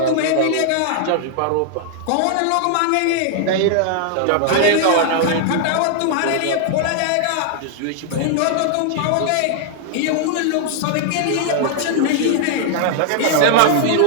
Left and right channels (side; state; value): both; different; correlation -0.01